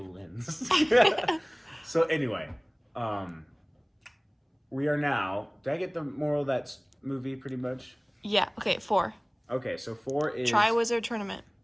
lens. So anyway, we are now. Did I get the moral of that movie pretty much? Yeah. Okay. 4. Okay, so 4 is Triwizard Tournament.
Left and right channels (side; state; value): both; identical; correlation 1.00